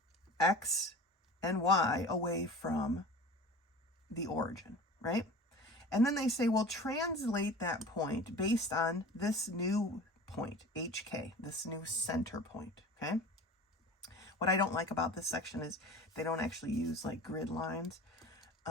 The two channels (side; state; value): both; normal; correlation 0.38